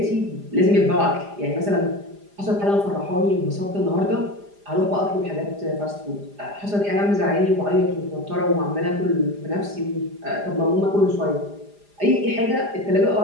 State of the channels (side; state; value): left; late; 4.9 ms